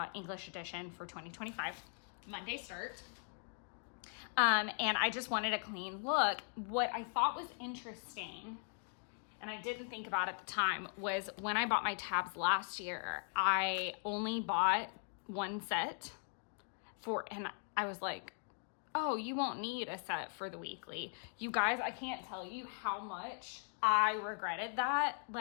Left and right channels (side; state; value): right; silent; 51 dB below the other